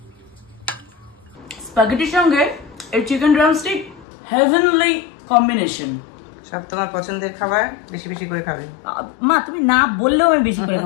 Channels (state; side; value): drops out; right; at 4.0 s